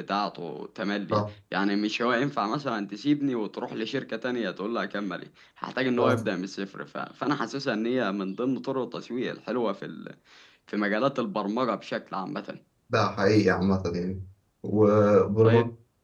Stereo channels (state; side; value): identical; both; correlation 1.00